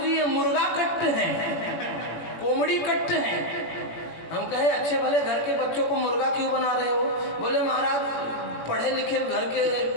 ये मुर्गा कट है, कोमड़ी कट है। हम कहे अच्छे भले घर के बच्चों को मुर्गा क्यों बना रहे हो? बोले महाराज पढ़े लिखे घर के,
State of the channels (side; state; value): right; late; 18 ms